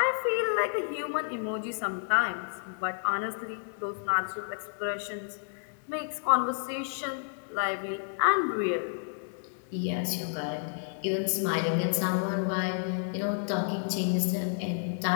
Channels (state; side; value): silent; right; 57 dB below the other